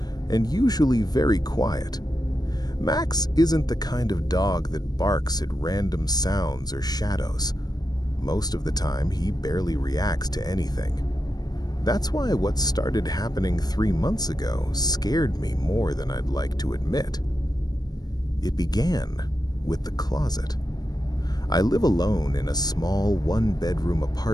and usually very quiet. Max isn't the kind of dog that barks at random sounds or shadows. Most of the time, he barely reacts to anything. That's why what started happening 3 months ago scared me more than I'd like to admit. It began with the closet. I live alone in a small one-bedroom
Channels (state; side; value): late; right; 0.19 ms